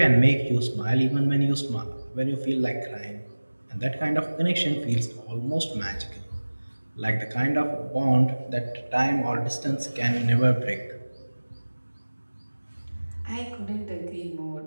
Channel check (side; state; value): both; inverted; correlation -1.00